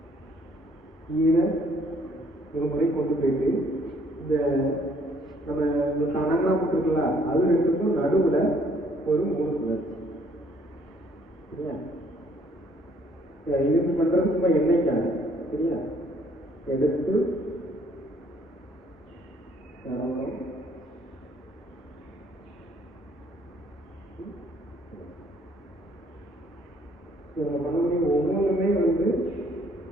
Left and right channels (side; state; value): both; normal; correlation 0.64